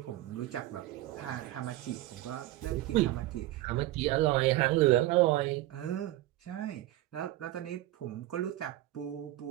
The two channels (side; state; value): left; quieter; 16.0 dB